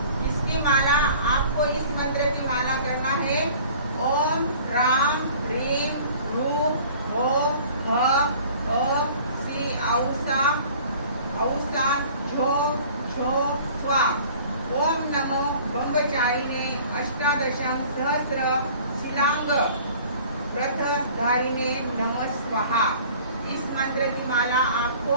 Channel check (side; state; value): both; inverted; correlation -0.48